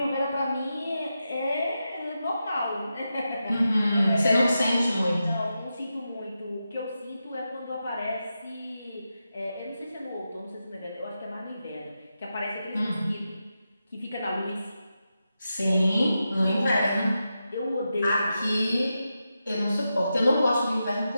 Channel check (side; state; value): both; inverted; correlation -0.89